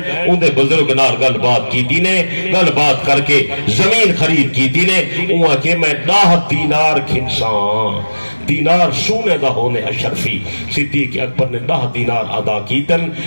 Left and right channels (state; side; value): inverted; both; correlation -1.00